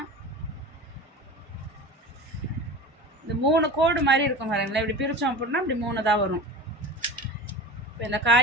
இந்த 3 கோடு மாதிரி இருக்கும் பாருங்களேன். இப்படி பிரித்தோம் அப்படின்னா இப்படி 3 தான் வரும். இப்போ இந்த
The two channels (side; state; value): both; normal; correlation 0.32